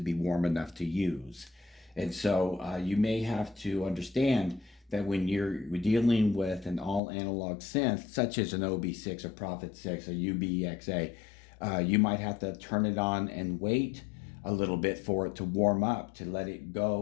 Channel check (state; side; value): drops out; right; at 7.0 s